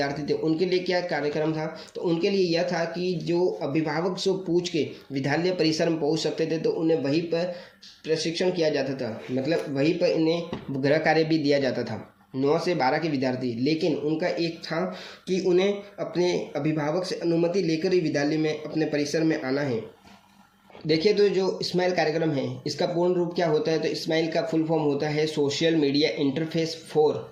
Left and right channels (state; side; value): identical; both; correlation 1.00